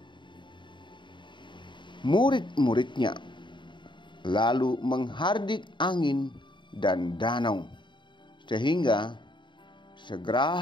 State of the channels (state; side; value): late; right; 0.23 ms